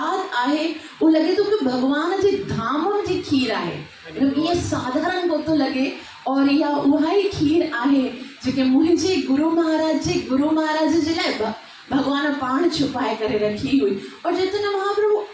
आहे उहो लॻे थो कि भगवान जे धाम जी खीर आहे, इहा साधारण कोन थो लॻे। और इहा उहा ई खीर आहे जेके मुंहिंजे गुरु महाराज जे लाइ भगवान पाण छुपाए करे रखी हुई। और चैतन्य महाप्रभु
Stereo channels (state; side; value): identical; both; correlation 1.00